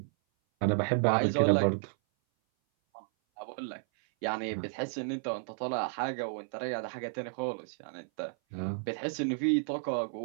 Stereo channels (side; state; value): left; silent; 56 dB below the other